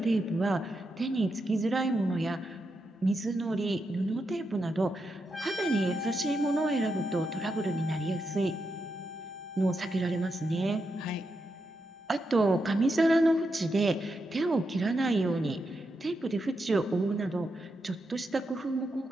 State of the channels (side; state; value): both; normal; correlation 0.85